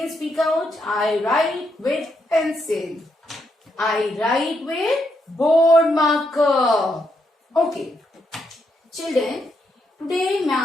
speak out. I write with pencil. I write with board marker. Okay. Children, today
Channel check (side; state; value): both; normal; correlation 0.79